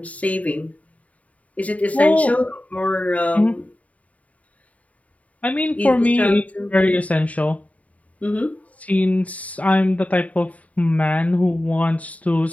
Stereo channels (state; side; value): late; right; 0.069 ms